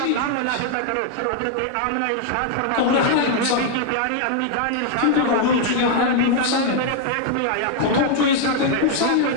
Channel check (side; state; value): both; different; correlation 0.00